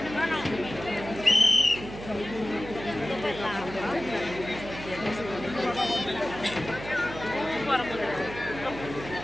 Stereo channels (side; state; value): right; noise; hum, 11 dB below the sound